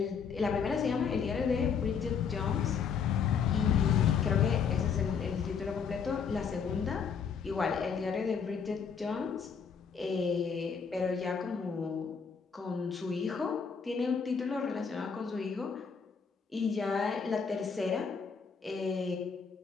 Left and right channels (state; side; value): quieter; right; 6.2 dB